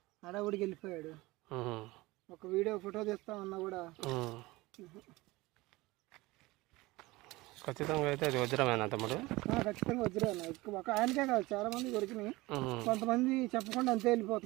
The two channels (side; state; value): left; quieter; 20.9 dB